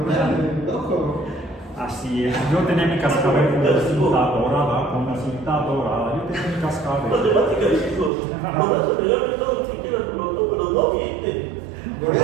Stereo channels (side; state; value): left; drops out; at 8.1 s